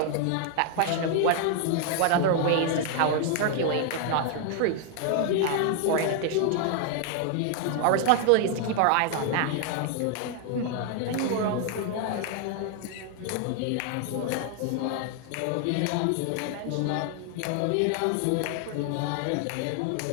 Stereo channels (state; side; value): different; both; correlation 0.00